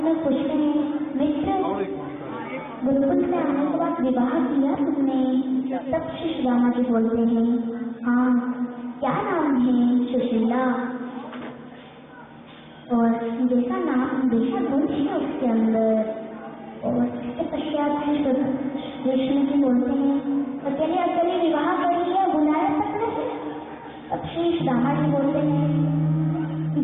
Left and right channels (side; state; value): both; identical; correlation 1.00